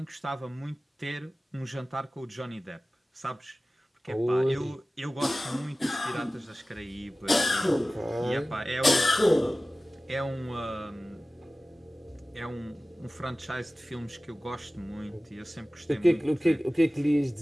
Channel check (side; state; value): both; normal; correlation 0.97